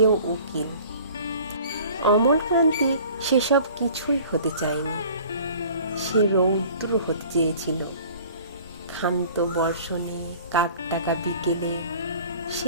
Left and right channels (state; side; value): inverted; both; correlation -0.48